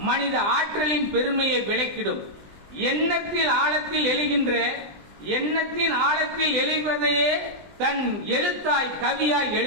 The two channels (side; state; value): left; late; 20 ms